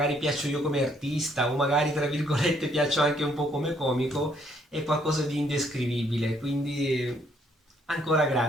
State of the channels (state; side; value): normal; both; correlation 0.68